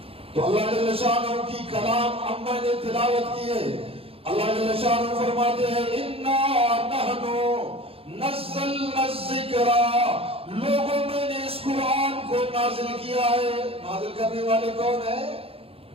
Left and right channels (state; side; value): late; left; 0.27 ms